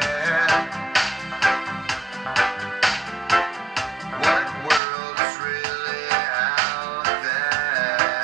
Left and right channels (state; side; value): drops out; left; at 4.8 s